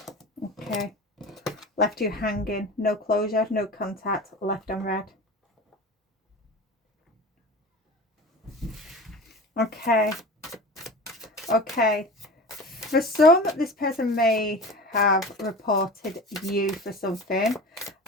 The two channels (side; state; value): both; normal; correlation 0.34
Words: Okay, left you hanging, no closure, no contact, left on red. Okay, for some, this person may have reported you for something.